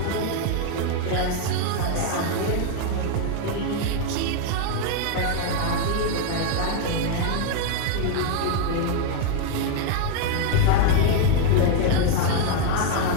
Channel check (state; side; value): different; both; correlation 0.01